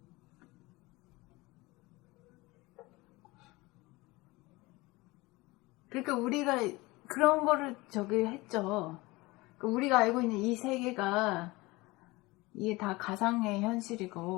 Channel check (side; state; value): right; quieter; 22.1 dB